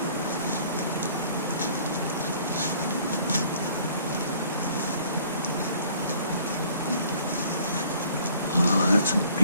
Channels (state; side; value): inverted; both; correlation -0.58